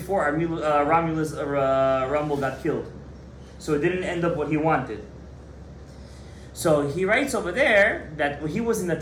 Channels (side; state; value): both; identical; correlation 1.00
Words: Romulus Rommel got killed. So it didn't end up what he wanted. So he writes over there that he was in the